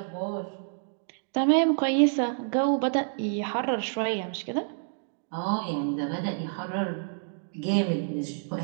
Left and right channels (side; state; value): left; silent; digital silence